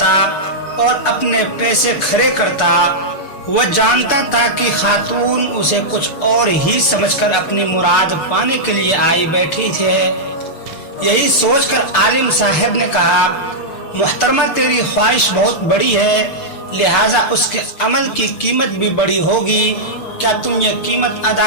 اور اپنے پیسے کھڑے کرتا۔ وہ جانتا تھا کہ خاتون اسے کچھ اور ہی سمجھ کر اپنی مراد پانے کے لیے آئی بیٹھی تھے۔ یہی سوچ کر عالم صاحب نے کہا، محترمہ تیری خواہش بہت بڑی ہے، لہٰذا اس کے عمل کی قیمت بھی بڑی ہوگی، کیا تم یہ قیمت ادا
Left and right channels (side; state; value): right; late; 6.6 ms